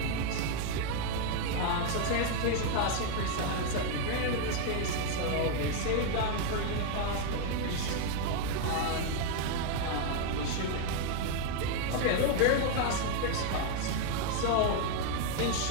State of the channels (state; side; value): different; both; correlation 0.01